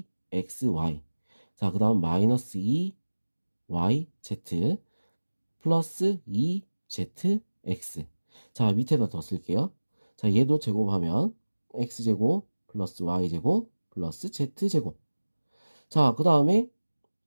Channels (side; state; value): both; inverted; correlation -1.00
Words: 자, 그 다음 마이너스 2yz 플러스 2zx. 자, 밑에다 더 쓸게요. 자, 얘도 제곱하면 x제곱 플러스 y제곱 플러스 z제곱. 자, 그 다음에